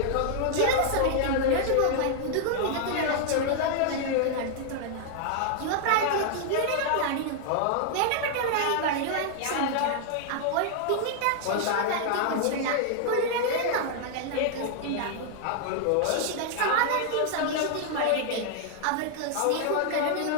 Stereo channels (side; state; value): both; different; correlation 0.00